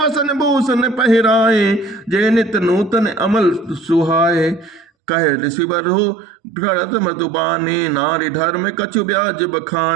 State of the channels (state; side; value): drops out; left; at 4.9 s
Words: भूषण पहिराए, जे नित नूतन अमल सुहाए, कहे ऋषिवर हो भरत मधुबानी, नारी धर्म कछु ब्याज